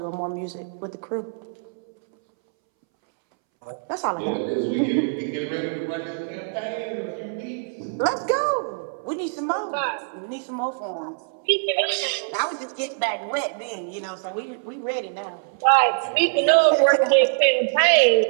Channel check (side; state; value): left; silent; 63 dB below the other